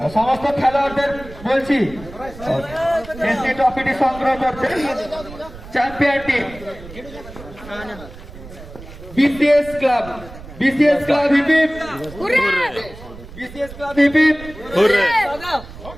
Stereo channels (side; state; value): right; noise; rumble, 16 dB below the sound